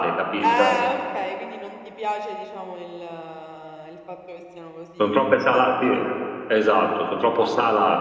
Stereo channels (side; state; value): both; identical; correlation 1.00